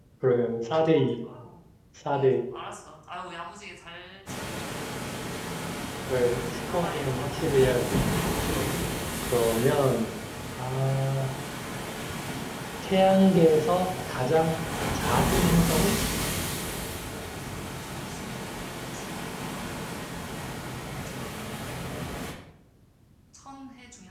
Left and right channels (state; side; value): identical; both; correlation 1.00